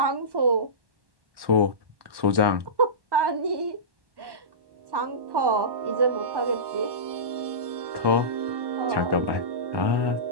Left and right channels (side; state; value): left; late; 1.1 ms